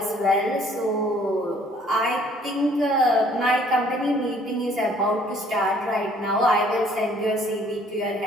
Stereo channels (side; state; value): both; normal; correlation 0.59